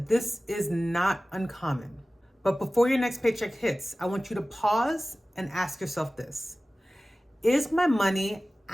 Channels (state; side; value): normal; both; correlation 0.97